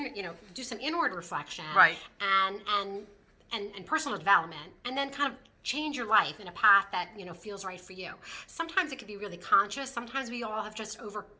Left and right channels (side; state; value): both; identical; correlation 1.00